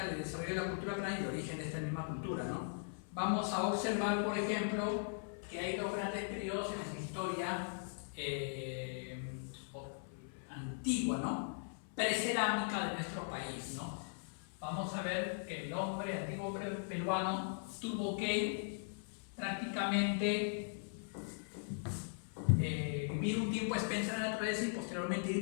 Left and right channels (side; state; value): right; silent; 51 dB below the other